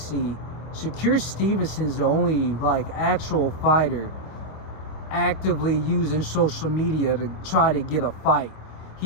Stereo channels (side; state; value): right; late; 26 ms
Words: Shakur Stevenson's the only actual fighter actively using social media to try to get a fight.